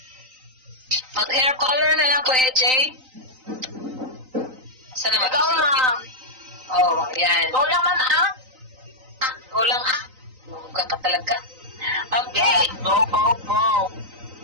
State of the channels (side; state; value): left; late; 3.9 ms